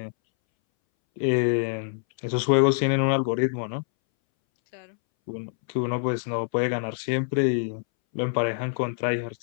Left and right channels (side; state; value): right; silent; 61 dB below the other